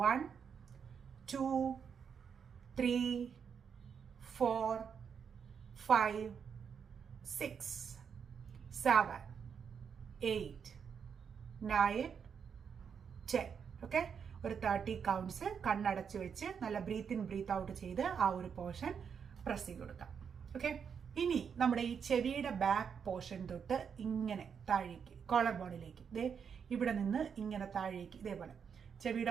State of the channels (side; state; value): left; quieter; 6.9 dB